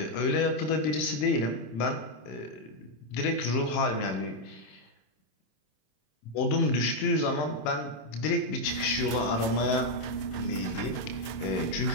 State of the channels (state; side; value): late; right; 26 ms